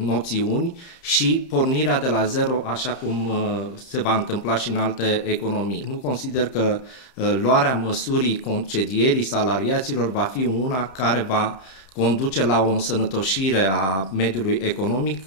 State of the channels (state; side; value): late; right; 31 ms